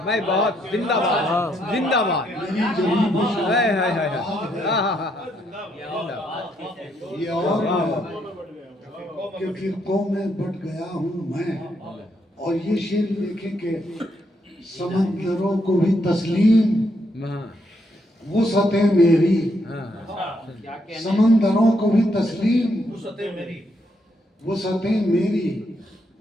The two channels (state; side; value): normal; both; correlation 0.76